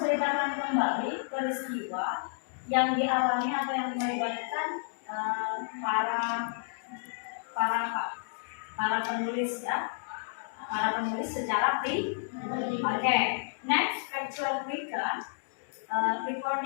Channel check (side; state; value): right; silent; digital silence